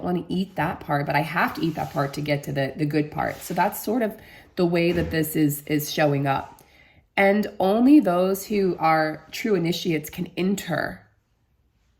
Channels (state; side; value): identical; both; correlation 1.00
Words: want to eat that part, but I have to eat that part to get to the good part. So that's sort of the way that this is showing up. And only those who are true initiates can enter.